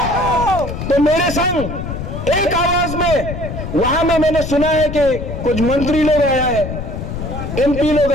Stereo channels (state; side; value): noise; left; rumble, 6 dB below the sound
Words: तो मेरे संग एक आवाज में वहां में मैंने सुना है कि कुछ मंत्री लोग आया है, एमपी लोग